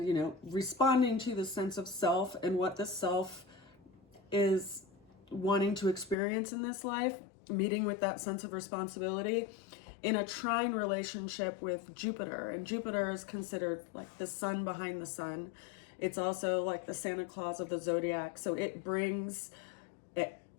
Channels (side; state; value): right; drops out; at 6.2 s